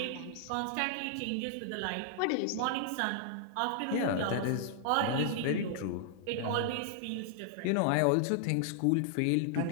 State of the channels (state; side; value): different; both; correlation -0.01